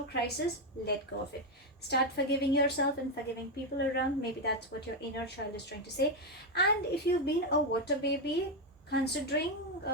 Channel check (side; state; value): both; normal; correlation 0.06